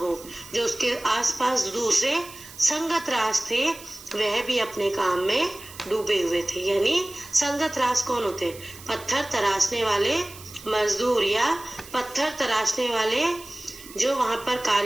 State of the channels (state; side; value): noise; right; hiss, 17 dB below the sound